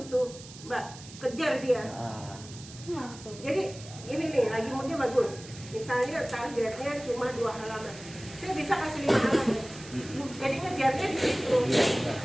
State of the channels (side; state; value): right; noise; hiss, 16 dB below the sound